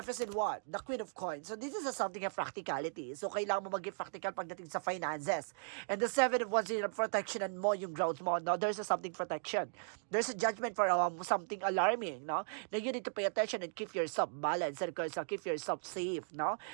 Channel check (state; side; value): silent; left; digital silence